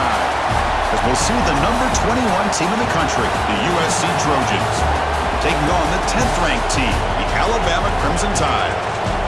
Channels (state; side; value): identical; both; correlation 1.00